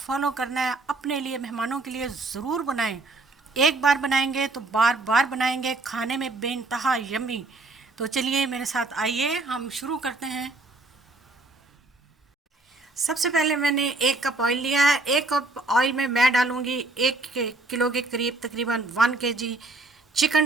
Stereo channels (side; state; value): left; quieter; 3.2 dB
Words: करना है। अपने लिए, मेहमानों के लिए ज़रूर बनाएं। एक बार बनाएंगे तो बार बार बनाएंगे। खाने में बेइंतहा यम्मी। तो चलिए मेरे साथ आइए, हम शुरू करते हैं। सबसे पहले मैंने 1 कप ऑयल लिया है। 1 कप ऑयल में मैं डालूंगी 1 किलो के करीब तकरीबन 1 kg